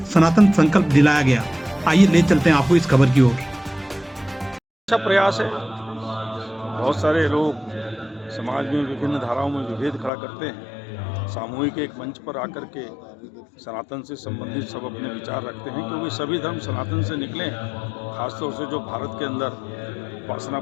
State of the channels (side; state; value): right; drops out; at 10.1 s